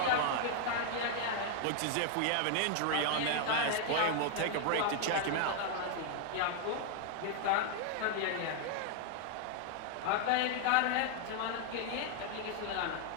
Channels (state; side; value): different; both; correlation 0.00